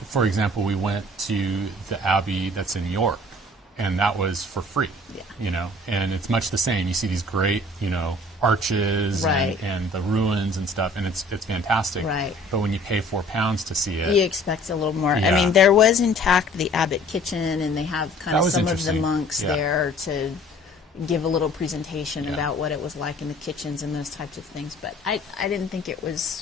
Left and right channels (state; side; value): normal; both; correlation 0.52